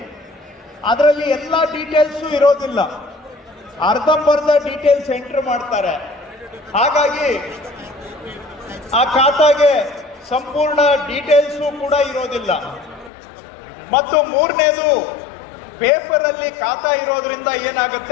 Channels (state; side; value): drops out; right; at 13.1 s